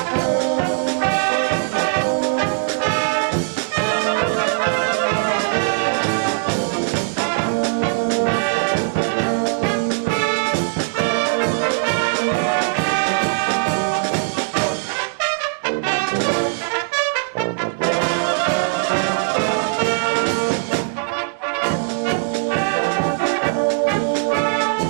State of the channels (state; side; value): silent; left; digital silence